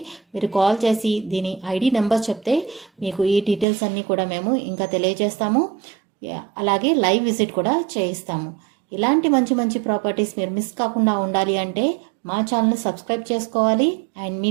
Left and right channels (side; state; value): left; drops out; at 3.7 s